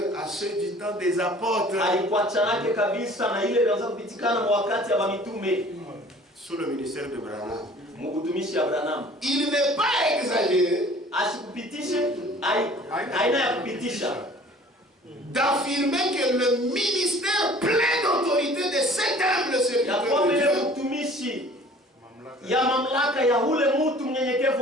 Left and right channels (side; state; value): both; normal; correlation 0.50